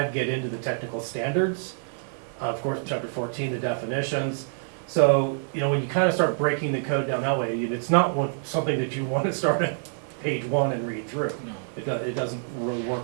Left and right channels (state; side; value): silent; left; digital silence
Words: get into the technical standards, of course, chapter 14, the definitions. So, you know, when you kind of start breaking the code down that way, it's not something that you want to start at page 1 and read through. No. It doesn't really work